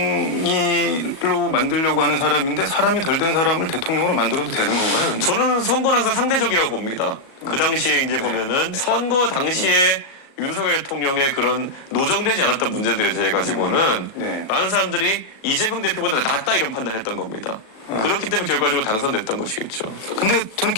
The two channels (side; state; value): right; late; 37 ms